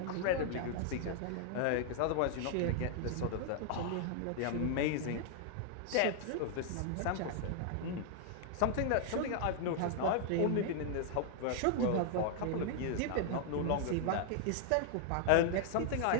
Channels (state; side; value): different; both; correlation 0.00